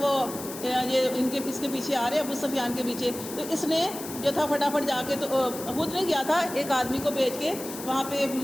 وہ یہ اس کے پیچھے آ رہے ہیں ابو سفیان کے پیچھے، تو اس نے جو تھا فٹافٹ جا کے تو خود نہیں گیا تھا، ایک آدمی کو بھیج کے وہاں پہ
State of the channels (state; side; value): noise; left; hiss, 11 dB below the sound